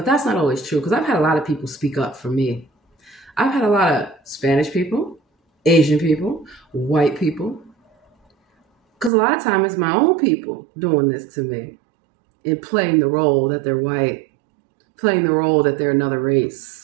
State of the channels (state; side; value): drops out; left; at 9.1 s